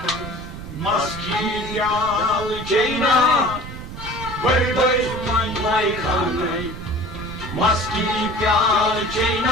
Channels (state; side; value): noise; right; rumble, 11 dB below the sound